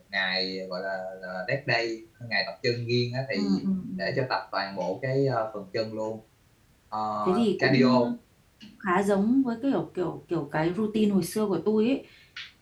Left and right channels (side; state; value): both; identical; correlation 1.00